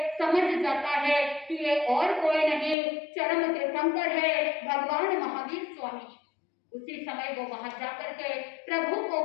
समझ जाता है कि ये और कोई नहीं, चरम तीर्थंकर है भगवान महावीर स्वामी। उसी समय वो वहां जाकर के प्रभु को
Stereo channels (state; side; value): drops out; right; at 2.8 s